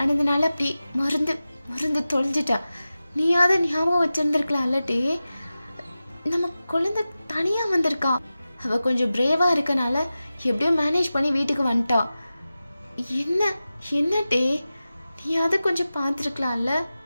அப்படி மருந்து தொலைஞ்சிட்டேன். நீயாவது ஞாபகம் வச்சுருந்துருக்கலாம் அல்லட்டே. நம்ம குழந்தை தனியாக வந்திருக்கா. அவள் கொஞ்சம் பிரேவாக இருக்கனால எப்படியோ மேனேஜ் பண்ணி வீட்டுக்கு வந்துட்டா. என்ன டே, நீயாவது கொஞ்சம் பார்த்துருக்கலாம்ல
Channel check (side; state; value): both; inverted; correlation -0.95